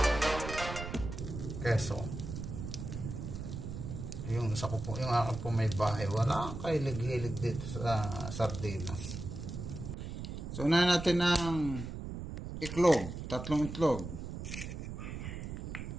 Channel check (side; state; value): right; noise; rumble, 7 dB below the sound